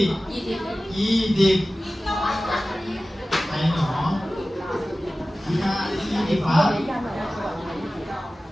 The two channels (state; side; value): normal; both; correlation 0.96